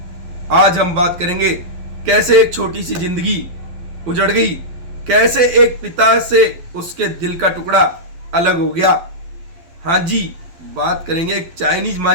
आज हम बात करेंगे कैसे एक छोटी सी जिंदगी उजड़ गई, कैसे एक पिता से उसके दिल का टुकड़ा अलग हो गया। हाँ जी, बात करेंगे एक चाइनीज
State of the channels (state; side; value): late; left; 12 ms